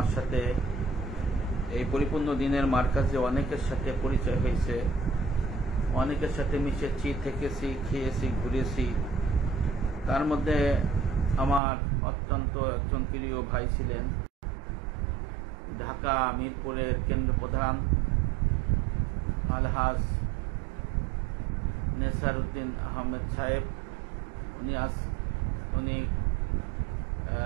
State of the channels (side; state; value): left; drops out; at 11.6 s